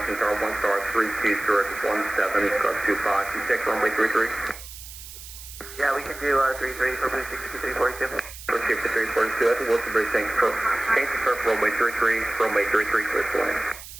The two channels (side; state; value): right; noise; hiss, 14 dB below the sound